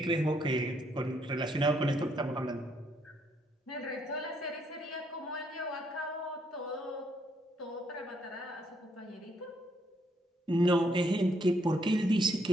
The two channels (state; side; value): normal; both; correlation 0.72